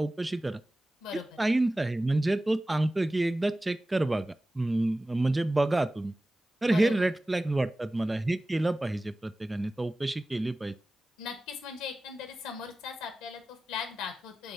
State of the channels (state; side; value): normal; both; correlation 0.96